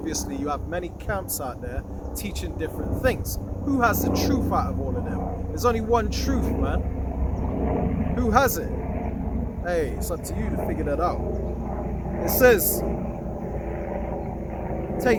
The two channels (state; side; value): identical; both; correlation 1.00